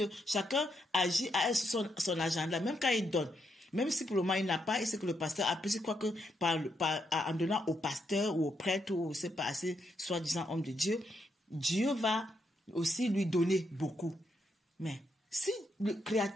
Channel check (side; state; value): both; normal; correlation 0.79